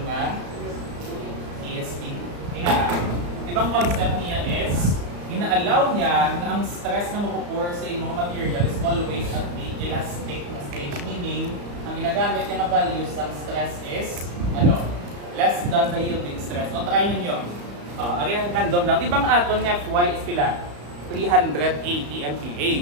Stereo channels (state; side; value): late; left; 34 ms